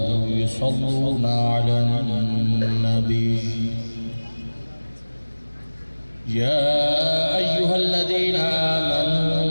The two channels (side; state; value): both; inverted; correlation -1.00